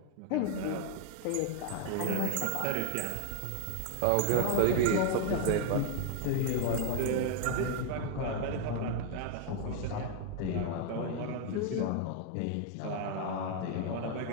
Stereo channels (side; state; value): both; different; correlation 0.00